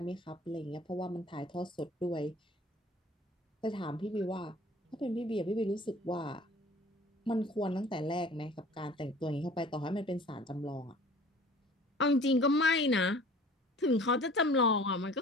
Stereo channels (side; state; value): both; normal; correlation 0.48